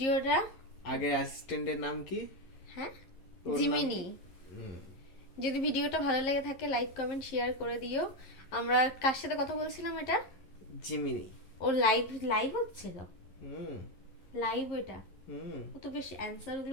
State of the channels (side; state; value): right; late; 11 ms